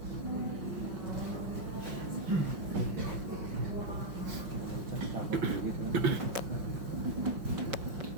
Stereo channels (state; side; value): late; left; 5.5 ms